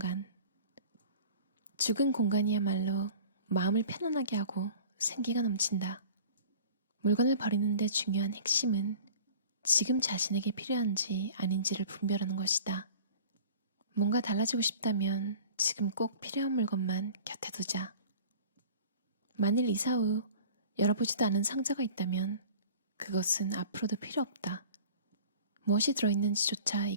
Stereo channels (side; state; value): both; inverted; correlation -0.44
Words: 죽은 공간이야말로 마음을 편안하게 하고 생기가 넘친다. 물건을 버리는데 중요한 핵심은 지금 자신에게 필요한지 아닌지를 분별하는 것이다. 뭔가 달라지고 싶다면 지금 꼭 필요한 물건만 곁에 두자. 만일 이사 후 열어보지도 않은 상자가 있다면 그것은 앞으로도 필요 없다. 무엇이 들어있는지조차